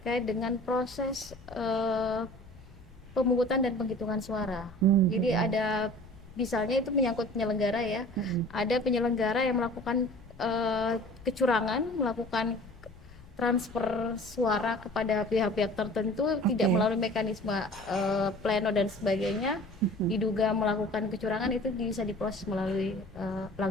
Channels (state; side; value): noise; left; rumble, 20 dB below the sound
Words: dengan proses pemungutan dan penghitungan suara. Jadi Mhm. ada misalnya itu menyangkut penyelenggara ya. Mhm. Ada penyelenggara yang melakukan kecurangan, melakukan transfer suara kepada pihak-pihak tertentu tidak Oke. melalui mekanisme pleno dan sebagainya, Mhm. diduga melakukan kecurangan, itu bisa diproses melalui